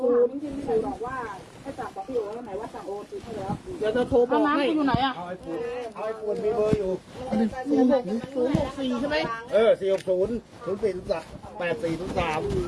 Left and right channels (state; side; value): identical; both; correlation 1.00